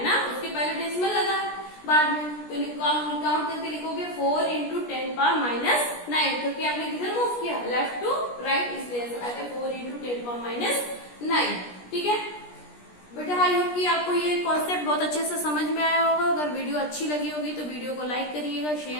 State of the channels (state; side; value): late; right; 17 ms